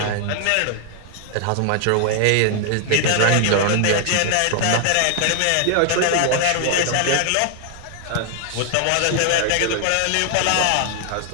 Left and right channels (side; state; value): both; different; correlation 0.00